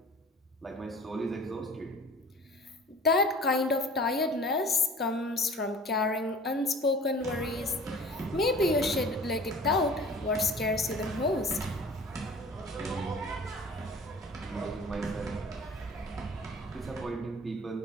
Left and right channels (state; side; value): normal; both; correlation 0.45